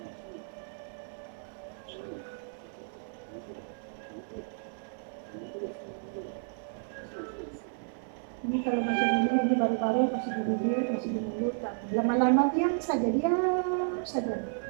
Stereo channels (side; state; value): left; silent; 57 dB below the other